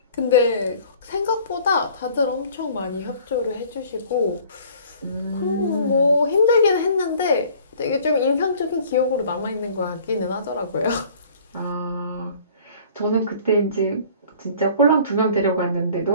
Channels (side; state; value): both; inverted; correlation -0.51